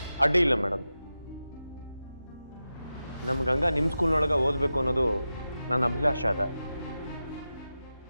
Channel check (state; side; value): inverted; both; correlation -0.92